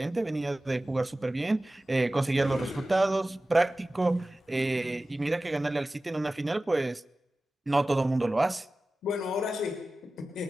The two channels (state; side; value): normal; both; correlation 0.96